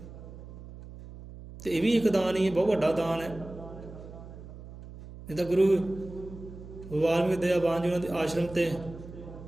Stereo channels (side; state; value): right; noise; hum, 15 dB below the sound